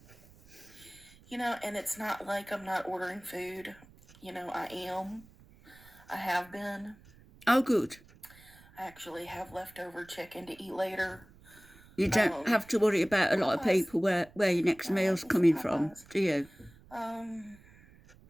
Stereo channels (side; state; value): right; noise; rumble, 25 dB below the sound